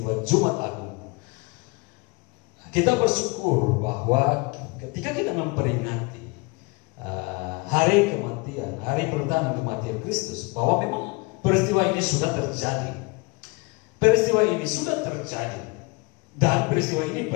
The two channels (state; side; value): quieter; right; 26.9 dB